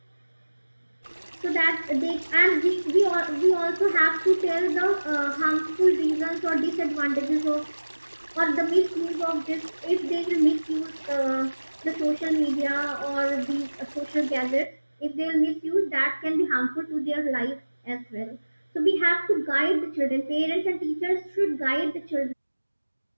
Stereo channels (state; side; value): inverted; both; correlation -1.00